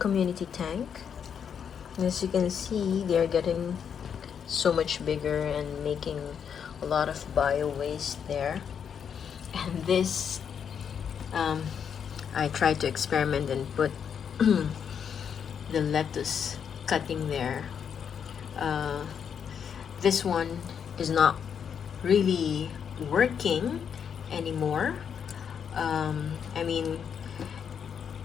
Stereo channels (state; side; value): quieter; right; 7.6 dB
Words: tank. As you can see, they are getting so much bigger and making a lot of bio waste there. And this, I tried to experiment and put the lettuce cutting there. This one is not really working anymore. I mean,